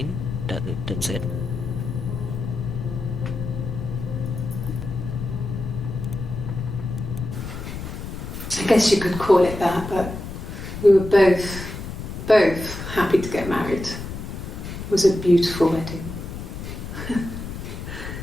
that's it? I guess you could call it that, but we were both happy to get married. It was a beautiful wedding.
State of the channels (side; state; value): left; noise; rumble, 8 dB below the sound